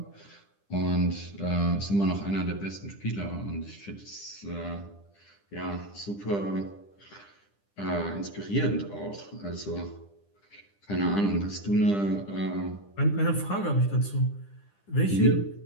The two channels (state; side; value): late; right; 10 ms